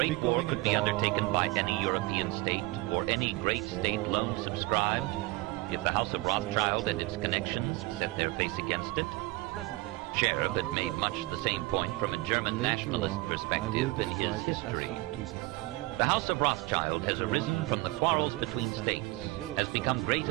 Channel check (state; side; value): quieter; left; 21.4 dB